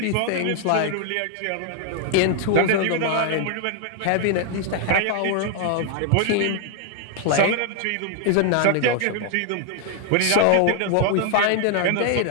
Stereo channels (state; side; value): different; both; correlation 0.00